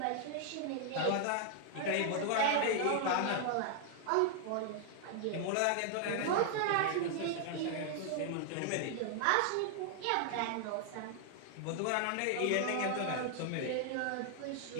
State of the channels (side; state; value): both; different; correlation 0.00